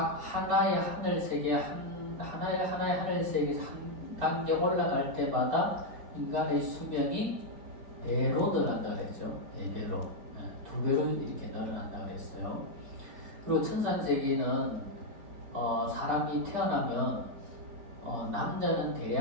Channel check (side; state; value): left; late; 5.0 ms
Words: 하나의 하늘세계 하나의 하늘세계 한 단계 올라갈 때마다 인간의 수명이 배로 늘어난다 그랬죠. 4배로, 2배로 이렇게 늘어난다 그랬어요. 그리고 천상세계는 사람이 태어나면 남자는